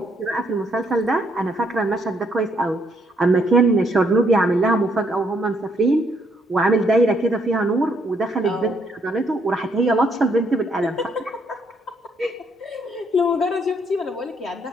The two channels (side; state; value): both; normal; correlation 0.71